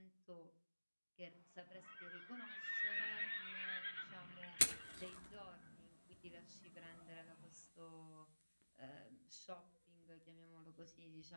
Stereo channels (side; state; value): both; inverted; correlation -1.00